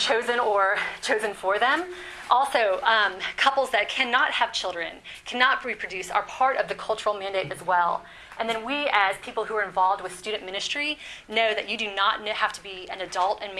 or chosen for them. Also, couples that cannot have children, cannot reproduce, are part of the cultural mandate as well. And then we, as people who are involved with student ministry, know that you do not have to be an adult and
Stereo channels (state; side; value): identical; both; correlation 1.00